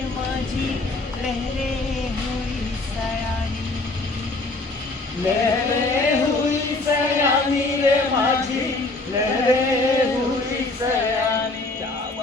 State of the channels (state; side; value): quieter; right; 3.1 dB